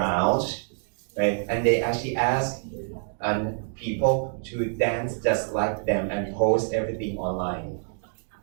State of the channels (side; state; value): left; silent; digital silence